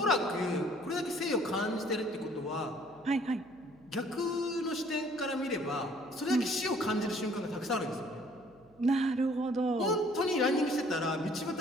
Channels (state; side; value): noise; right; hum, 30 dB below the sound